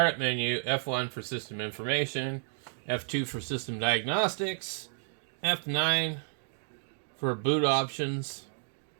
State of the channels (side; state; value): left; silent; digital silence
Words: menu, F1 for system information, F2 for system diagnostics, F9 for boot options,